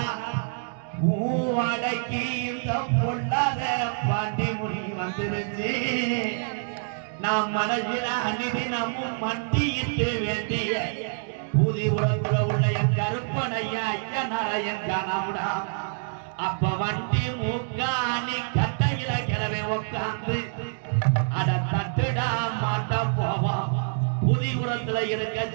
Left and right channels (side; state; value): left; silent; digital silence